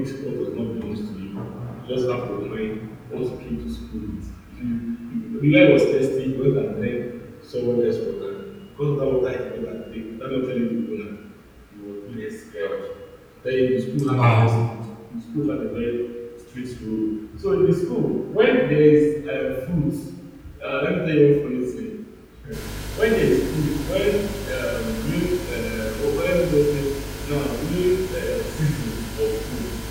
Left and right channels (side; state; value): both; identical; correlation 1.00